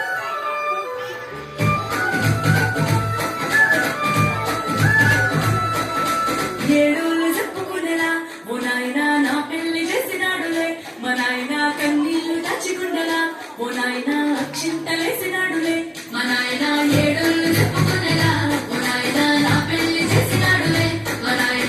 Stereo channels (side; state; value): both; identical; correlation 1.00